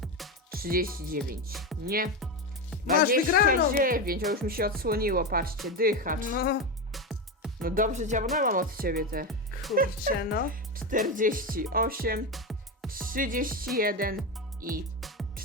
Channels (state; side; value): normal; both; correlation 0.15